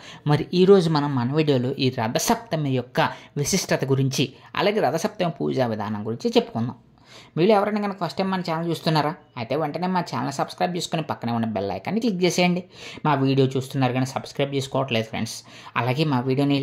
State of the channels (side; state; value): both; identical; correlation 1.00